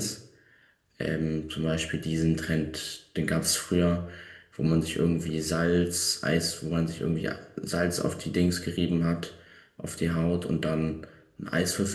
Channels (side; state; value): both; identical; correlation 1.00